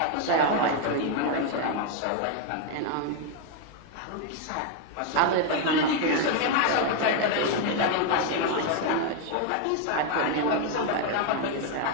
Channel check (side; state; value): both; different; correlation 0.01